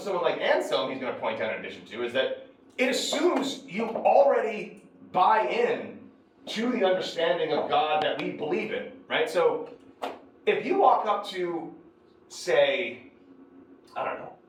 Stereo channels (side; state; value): both; identical; correlation 1.00